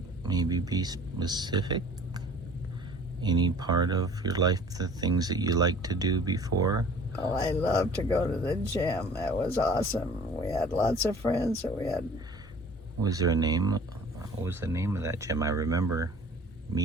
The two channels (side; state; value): both; normal; correlation 0.48